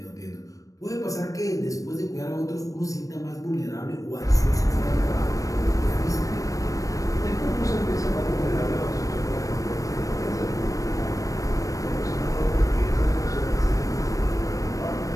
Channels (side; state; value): right; late; 0.16 ms